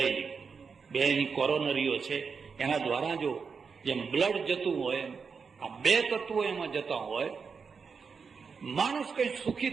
બે એની કોરોનરીઓ છે. એના દ્વારા જો જેમ બ્લડ જતું હોય આ બે તત્વો એમાં જતા હોય, માણસ કઈ સુખી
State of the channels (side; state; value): left; quieter; 5.6 dB